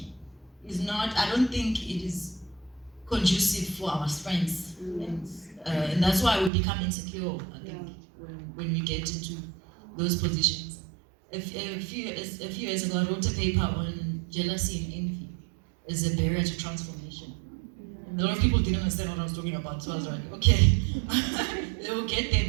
is not, I don't think it is conducive for our strengths, and that's why we become insecure, I think, when we get into those positions. A few years ago, I wrote a paper on jealousy and envy as a barrier to transformation. And a lot of people didn't understand what I was talking about, so I was like, okay, they will get there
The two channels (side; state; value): left; drops out; at 6.5 s